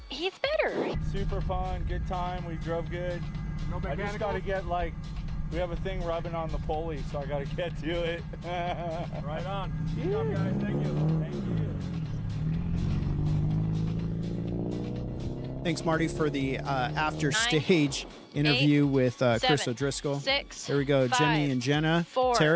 He's better. Super fun, good time. We drove good. No I just got to get like We have a thing rubbing on the pulley, so I got to get to it. Right on. Good job, guys. Thank you. Thank you. Thanks, Marty, for the after stage interview with Chris 7, O'Driscoll. 6. Here we go, 5, Jimmy and Jenna. 4.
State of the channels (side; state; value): both; identical; correlation 1.00